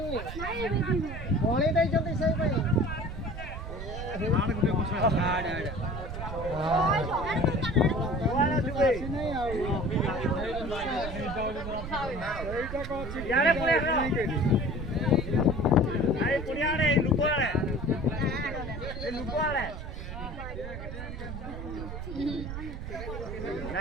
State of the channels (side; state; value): right; noise; rumble, 7 dB below the sound